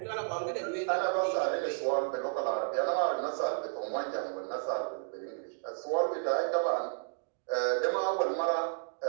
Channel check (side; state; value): left; silent; digital silence